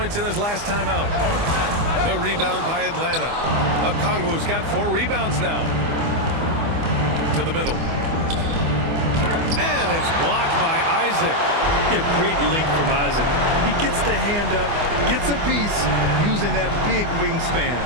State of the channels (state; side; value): late; left; 24 ms